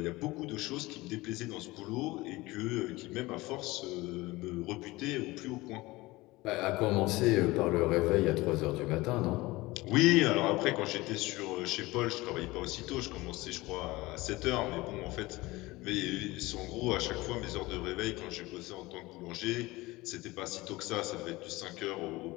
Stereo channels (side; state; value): right; quieter; 20.6 dB